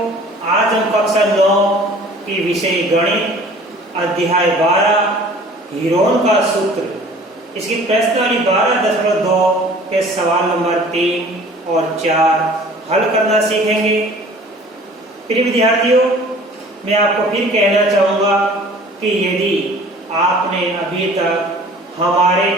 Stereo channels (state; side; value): normal; both; correlation 0.48